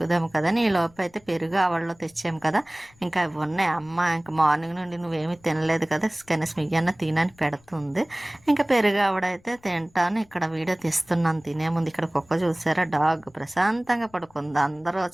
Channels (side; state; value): left; noise; rumble, 30 dB below the sound